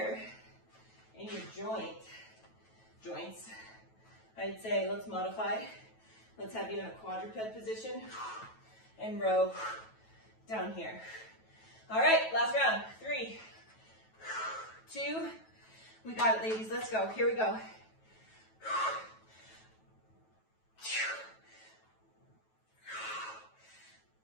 in your joints, I'd say let's modify. Let's have you in a quadruped position and row down here. All right, last round. 3, 2, we got it, ladies. Let's go. Here we go.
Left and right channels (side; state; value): right; late; 9.2 ms